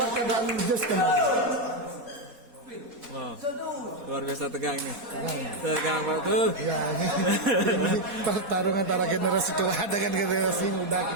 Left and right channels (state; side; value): late; left; 4.1 ms